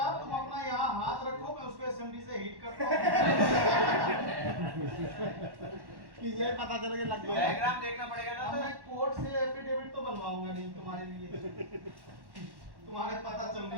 तुम अपना यहाँ हाथ रखो, मैं उसको एसएमडी से हीट करता हूँ कि ये पता चलेगा लग गया। डायग्राम देखना पड़ेगा ना। मैं कोर्ट से एफिडेविट तो बनवाऊंगा नहीं तुम्हारे लिए, तुम्हारे पता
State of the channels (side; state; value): left; late; 1.1 ms